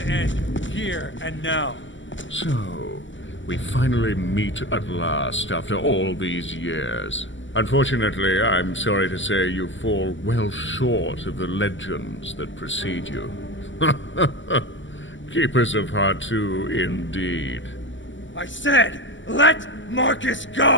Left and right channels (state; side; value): late; right; 0.55 ms